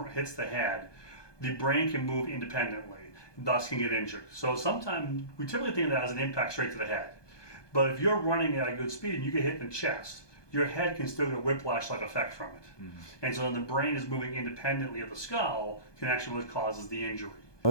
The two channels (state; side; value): late; right; 1.2 ms